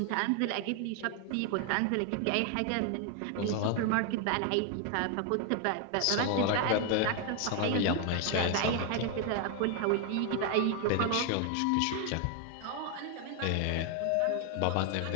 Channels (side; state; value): both; different; correlation 0.00